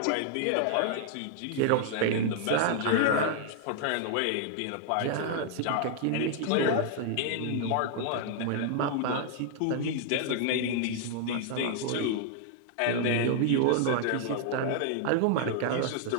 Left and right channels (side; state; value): both; different; correlation -0.01